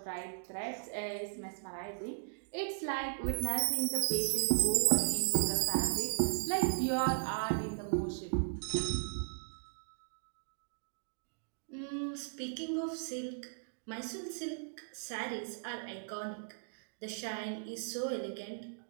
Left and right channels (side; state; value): left; silent; digital silence